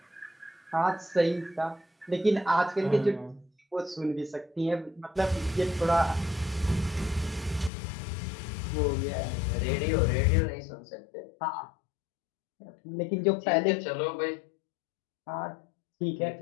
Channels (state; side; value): drops out; right; at 7.7 s